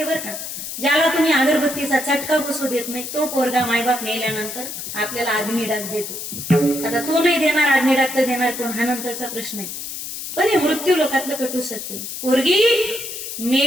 बरं का, ज्याला तुम्ही अगरबत्तीचा चटका बसू देत नाही तो पोरगा मायबाप मेल्यानंतर आपल्याला अग्निडाग देतो। आता तो नाही देणार अग्निडाग तर देणार कोण, हा नंतरचा प्रश्न आहे, पण हे मृत्यू लोकातलं कटू सत्य। पोरगी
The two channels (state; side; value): noise; left; hiss, 7 dB below the sound